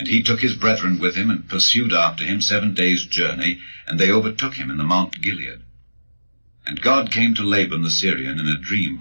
he took his brethren with him, and pursued after him 7 days' journey, and they overtook him in the Mount Gilead. And God came to Laban the Syrian in a dream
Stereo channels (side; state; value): both; inverted; correlation -1.00